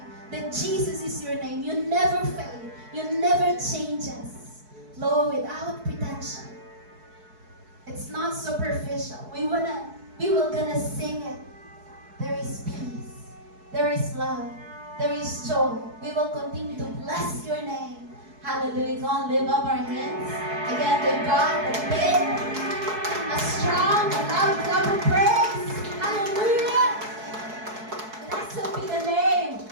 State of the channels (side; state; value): left; late; 4.6 ms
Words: that Jesus is your name. You never fail. You never change us. Lord, without pretension. It's not superficial. We will gonna sing it. There is peace. There is love. There is joy. We will continue to bless your name. Hallelujah. Go on, lift up our hands. Again, give God a big, a strong, a loud clap of praise. Hallelujah. Blessed be the name